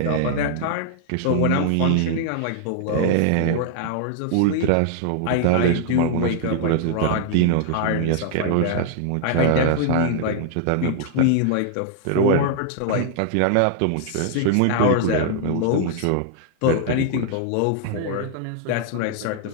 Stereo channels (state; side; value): different; both; correlation 0.00